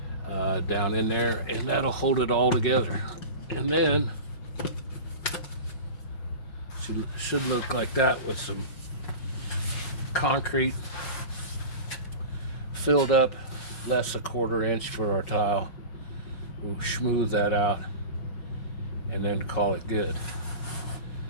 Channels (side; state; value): right; late; 5.3 ms